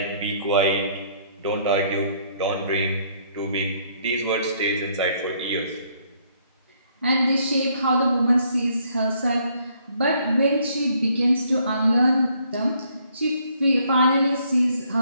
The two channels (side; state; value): both; inverted; correlation -0.67